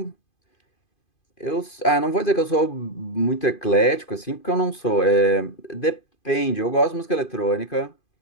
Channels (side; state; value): right; late; 2.5 ms